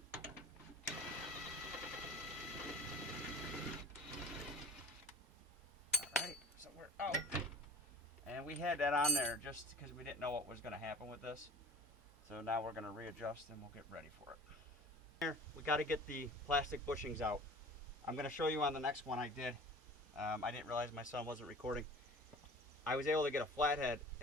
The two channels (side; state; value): both; normal; correlation 0.42